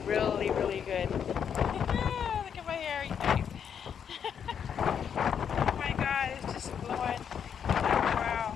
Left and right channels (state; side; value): quieter; right; 7.9 dB